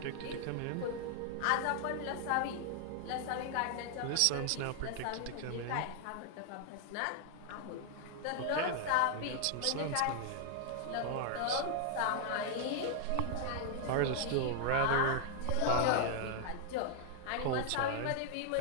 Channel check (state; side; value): different; both; correlation 0.00